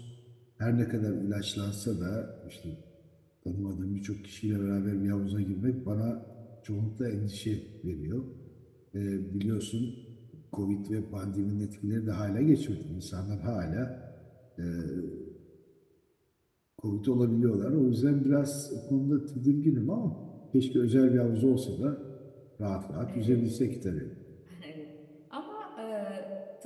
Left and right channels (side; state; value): both; identical; correlation 1.00